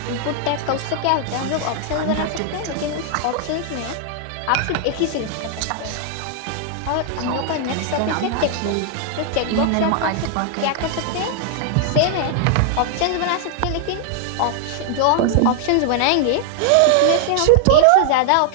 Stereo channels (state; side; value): different; both; correlation 0.00